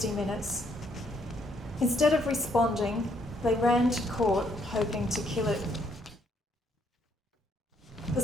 Minutes. Instead of responding, they ran to court hoping to kill it. The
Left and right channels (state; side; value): normal; both; correlation 0.70